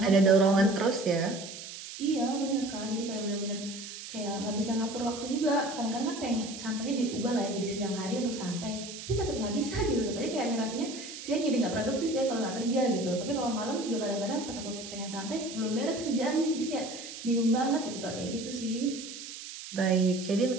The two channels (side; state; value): right; noise; hiss, 11 dB below the sound